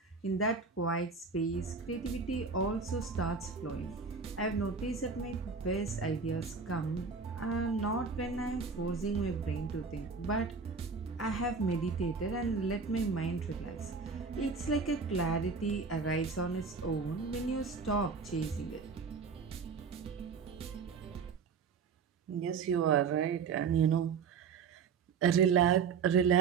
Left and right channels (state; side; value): quieter; left; 5.2 dB